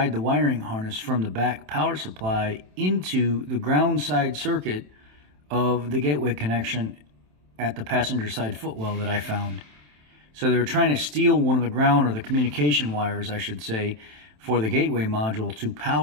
the wiring harness from the back power supply into the ground side circuit of the gateway connection at the passenger side footwell that I found. So they were trying to steal one of the ground, or the communication wires, I should say, for the gateway module to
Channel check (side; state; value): left; late; 27 ms